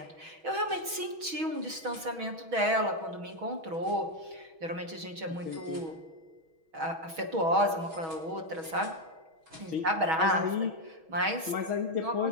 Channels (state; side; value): late; left; 6.2 ms